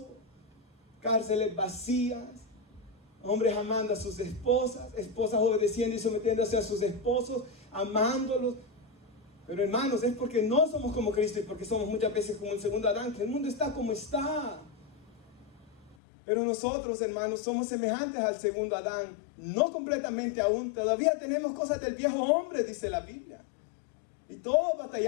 Cárceles vacías, hombres amando a sus esposas, esposas obedeciendo y sometiéndose a sus esposos, amándolos. Pero hermanos, es porque no somos como Cristo y porque somos muchas veces como el segundo Adán, que el mundo está como está. Pero nosotros, hermanos, somos semejantes al segundo Adán, no completamente aún, todavía tenemos cosas del viejo hombre, dice la Biblia. Y todos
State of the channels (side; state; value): right; drops out; at 16.0 s